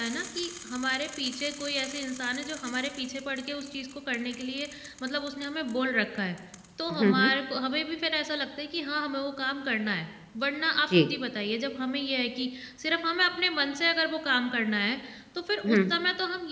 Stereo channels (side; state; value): both; identical; correlation 1.00